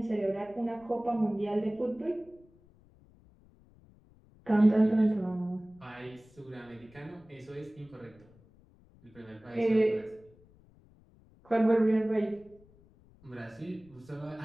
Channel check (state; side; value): noise; left; rumble, 27 dB below the sound